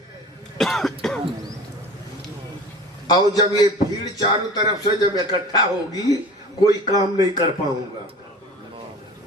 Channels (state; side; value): normal; both; correlation 0.40